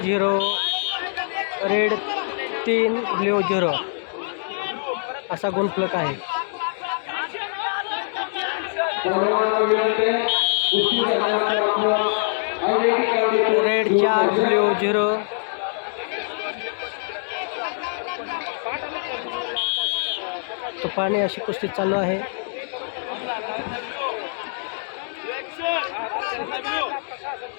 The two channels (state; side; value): silent; right; digital silence